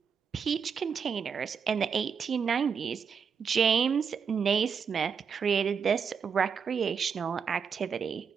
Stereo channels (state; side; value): quieter; left; 6.5 dB